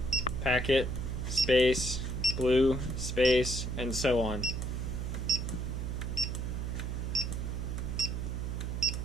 packet, space, blue, space, and so on.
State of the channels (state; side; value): noise; right; hum, 3 dB below the sound